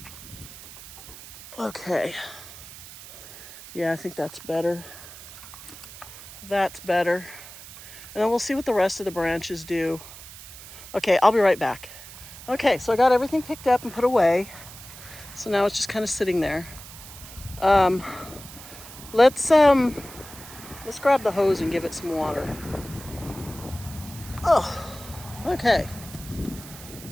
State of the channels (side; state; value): right; noise; hiss, 15 dB below the sound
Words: Okay. Yeah, I think that's better. That's better. And then we'll see what the rest of the branches do. Okay, I'll be right back. Okay, so I got everything picked up and put away. So now it's just kind of sitting there. Let's grab the hose and give it some water. Oh, okay.